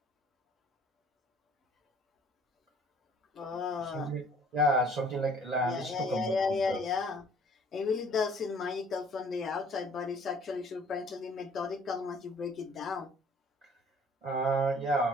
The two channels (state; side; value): normal; both; correlation 0.56